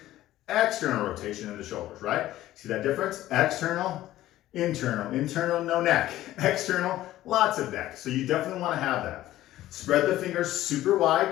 external rotation in the shoulders, right? See that difference? External, internal, no neck. External, lots of neck. So you definitely want to have that. Spread the fingers super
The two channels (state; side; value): quieter; right; 14.7 dB